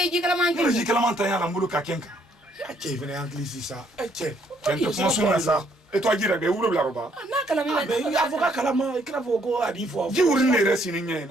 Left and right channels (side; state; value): both; normal; correlation 0.68